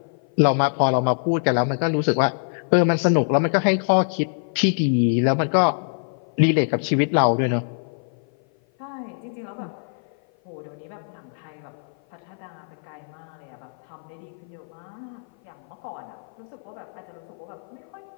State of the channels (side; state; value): right; silent; 56 dB below the other